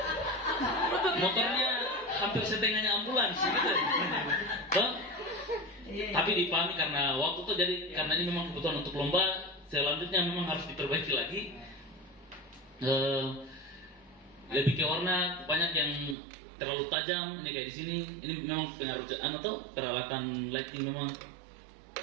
Motornya hampir setengahnya ambulans gitu. Tuh. Tapi dipahami karena waktu tuh jadi karena ini memang kebutuhan untuk lomba. Selanjutnya memang harus diperbaiki lagi. Lebih ke warna banyak yang terlalu tajam ini kayak di sini. Ini memang pengaruh atau peralatan lighting memang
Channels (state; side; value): drops out; left; at 16.2 s